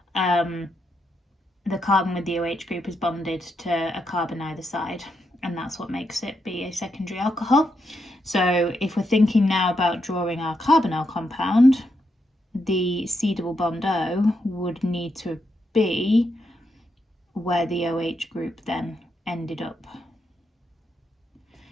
The carbon with the OH group is bonded to a carbon either side, and that's what makes it be a secondary alcohol. So if we're thinking now about drawing our carbonyl compound, the C double bond O would need to be where the OH group then ended up.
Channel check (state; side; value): normal; both; correlation 0.82